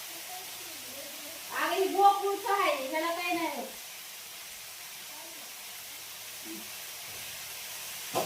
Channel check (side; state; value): both; identical; correlation 1.00